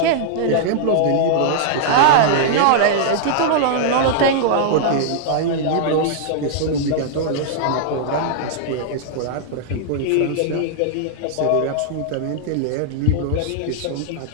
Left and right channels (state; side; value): different; both; correlation -0.01